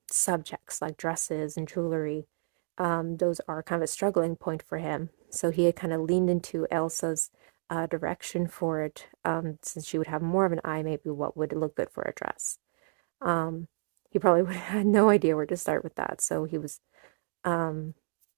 subjects like dresses and jewelry. Those are kind of a struggling point for him. So he had kind of leaned into Elsa's direction for it, since she would have more of an eye, maybe what would look good for a dress. Um, he probably would have had no idea where to start with that. So he was um,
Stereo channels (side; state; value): left; silent; 58 dB below the other